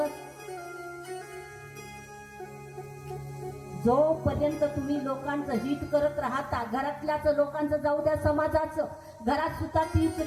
जोपर्यंत तुम्ही लोकांचं हित करत राहता, घरातल्याच लोकांचं जाऊ द्या, समाजाचं, घरात सुद्धा तीच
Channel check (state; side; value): identical; both; correlation 1.00